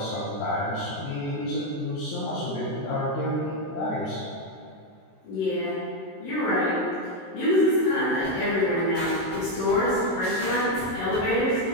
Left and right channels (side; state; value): right; late; 16 ms